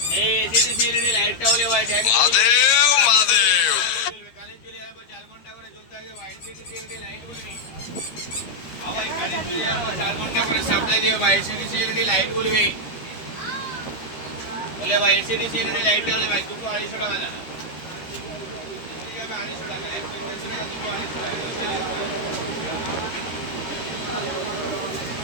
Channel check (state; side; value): late; right; 13 ms